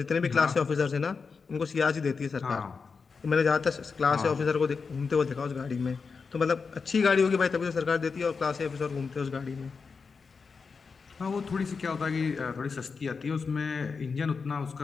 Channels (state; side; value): quieter; right; 5.1 dB